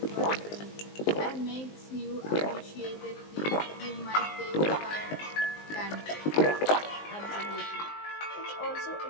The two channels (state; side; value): late; right; 19 ms